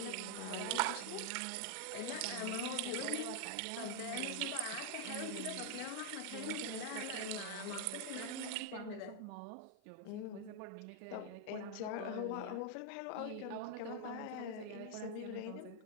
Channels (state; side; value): different; both; correlation 0.00